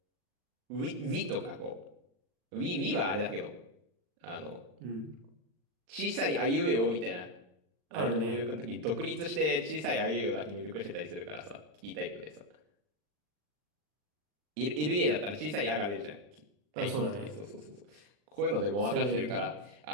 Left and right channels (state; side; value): late; left; 40 ms